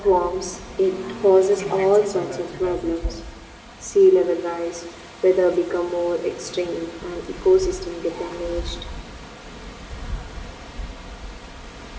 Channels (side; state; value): both; identical; correlation 1.00